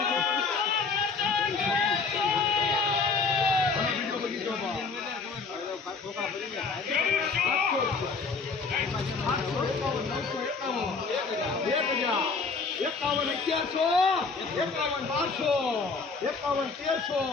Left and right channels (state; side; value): quieter; right; 4.6 dB